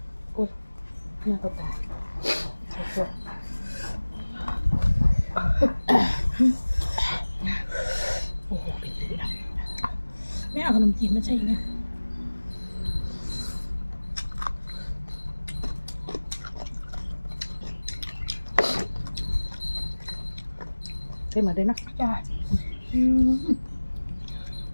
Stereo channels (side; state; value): both; inverted; correlation -1.00